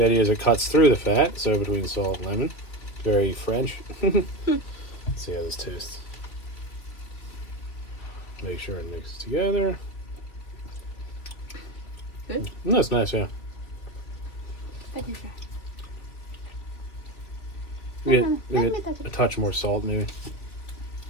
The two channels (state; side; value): late; right; 3.2 ms